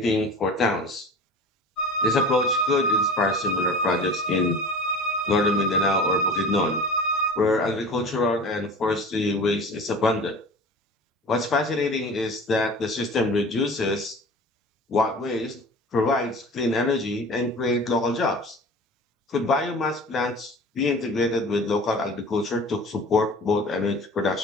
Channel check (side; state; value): both; normal; correlation 0.39